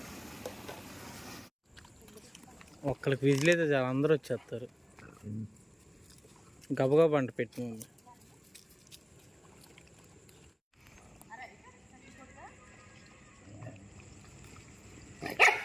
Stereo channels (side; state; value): both; identical; correlation 1.00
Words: ఒక్కరికి విజిల్ అయితే చాలా అందరూ వచ్చేస్తారు. గబగబా అంట పెట్టి